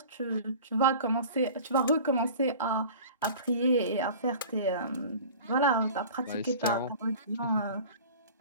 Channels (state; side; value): inverted; both; correlation -0.40